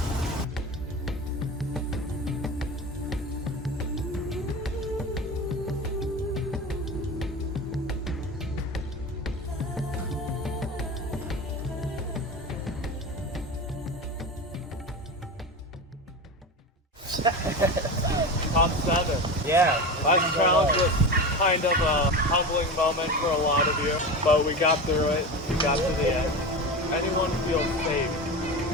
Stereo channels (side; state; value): both; normal; correlation 0.26